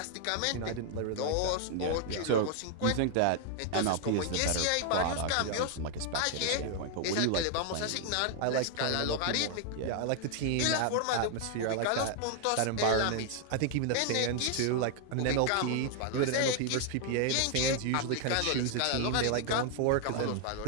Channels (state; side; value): different; both; correlation 0.00